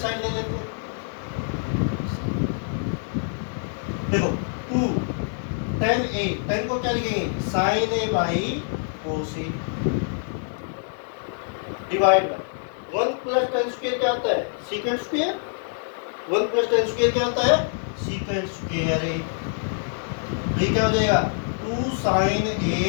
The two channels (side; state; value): right; silent; digital silence